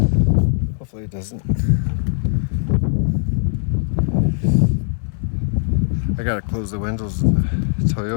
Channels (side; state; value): right; silent; digital silence